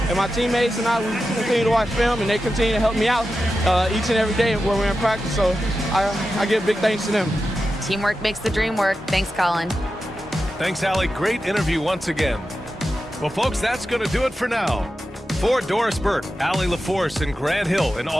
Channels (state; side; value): normal; both; correlation 0.91